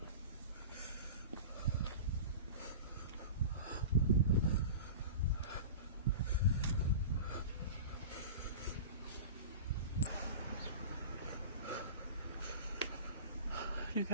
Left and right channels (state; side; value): inverted; both; correlation -0.32